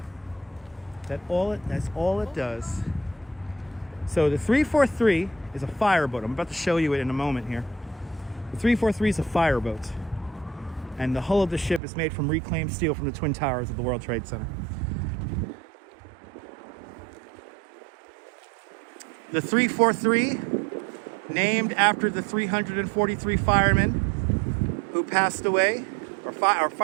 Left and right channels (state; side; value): drops out; left; at 11.8 s